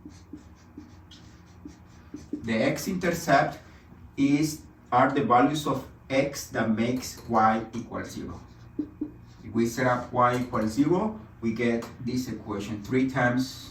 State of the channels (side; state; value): both; identical; correlation 1.00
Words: The x-intercept are the values of x that makes y equal 0. If we set up y equals 0, we get this equation 3